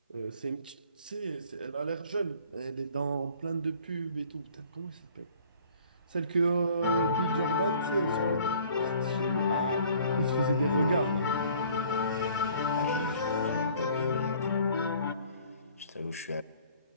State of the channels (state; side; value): inverted; both; correlation -0.54